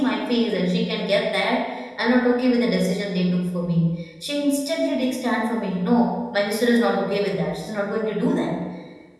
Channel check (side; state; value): both; identical; correlation 1.00